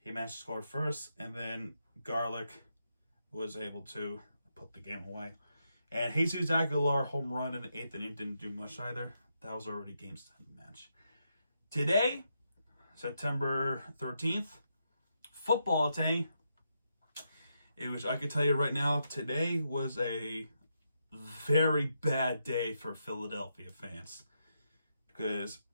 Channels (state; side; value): inverted; both; correlation -0.82